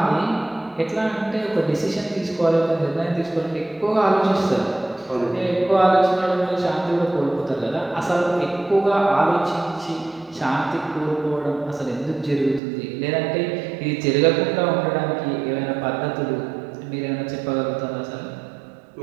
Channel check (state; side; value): drops out; left; at 12.6 s